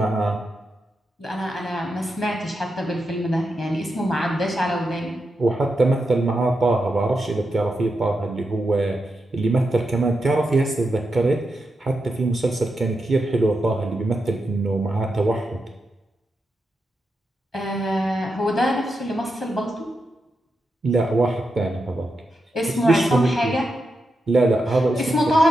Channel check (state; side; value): normal; both; correlation 0.87